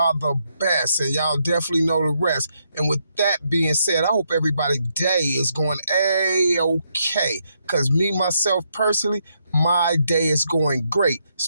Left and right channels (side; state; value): both; inverted; correlation -0.78